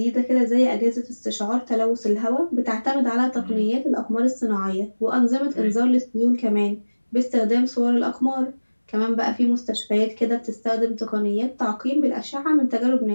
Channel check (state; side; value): inverted; both; correlation -1.00